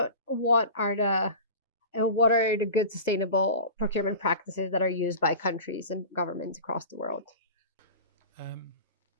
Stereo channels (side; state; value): both; inverted; correlation -0.34